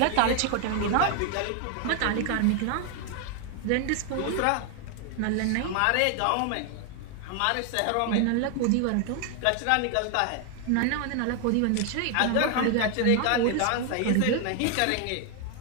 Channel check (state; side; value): different; both; correlation 0.01